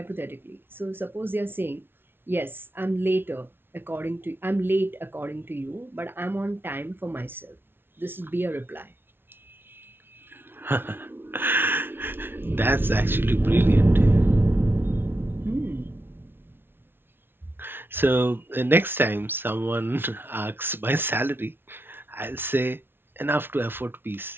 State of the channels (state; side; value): late; left; 0.11 ms